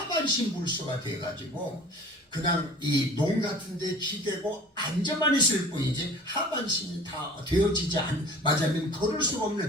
불수가 돼가지고 그냥 이 농 같은 데 기대고 앉아만 있을 뿐이지 하반신이 다 되어지지 맞으면 걸을 수가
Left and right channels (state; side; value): normal; both; correlation 0.44